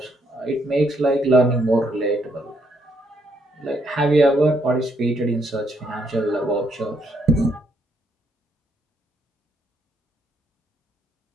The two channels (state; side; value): normal; both; correlation 0.73